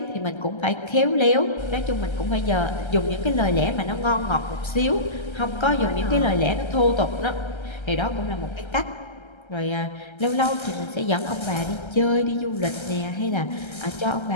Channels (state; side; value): late; right; 1.3 ms